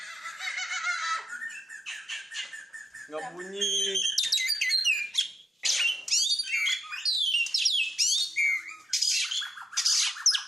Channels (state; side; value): normal; both; correlation 0.86